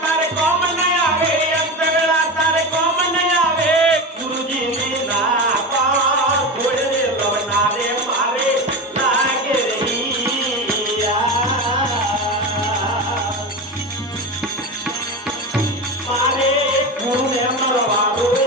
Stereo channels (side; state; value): both; normal; correlation 0.23